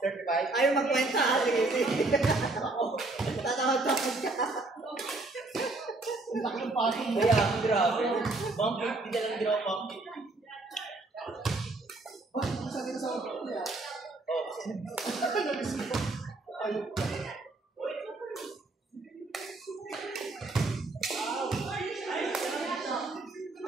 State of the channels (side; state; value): left; quieter; 3.1 dB